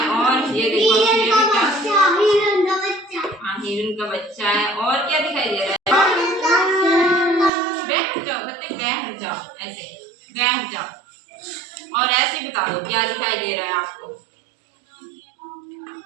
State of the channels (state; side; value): drops out; left; at 7.5 s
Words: और ये देखो, हाँ, हिरन का बच्चा है। और क्या दिखाई दे रहा है? बैठ जाओ बच्चे, बैठ जाओ, ऐसे बैठ जाओ। और ऐसे बता दो क्या दिखाई दे रहा है आपको,